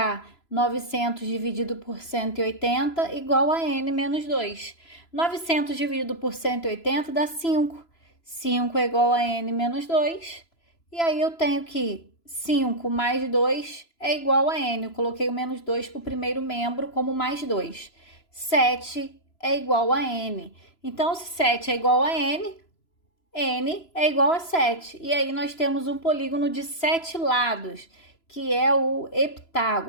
900 dividido por 180 igual a n menos 2. 900 dividido por 180 dá 5. 5 é igual a n menos 2. E aí eu tenho que 5 mais 2 é igual a n. Eu coloquei o menos 2 para o primeiro membro como mais 2. 7 é igual a n. Então, se 7 é igual a n, n é igual a 7. E aí nós temos um polígono de 7 lados, que é o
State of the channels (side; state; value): right; late; 3.0 ms